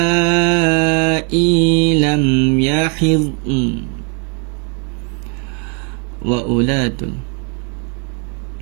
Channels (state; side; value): quieter; left; 37.4 dB